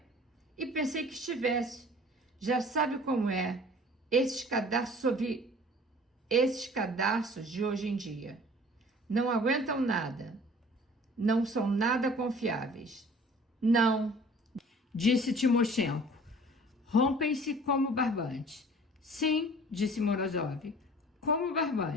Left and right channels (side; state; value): both; normal; correlation 0.48